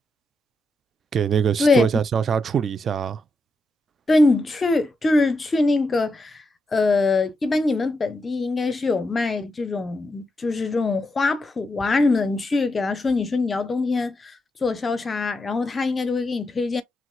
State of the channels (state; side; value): normal; both; correlation 0.84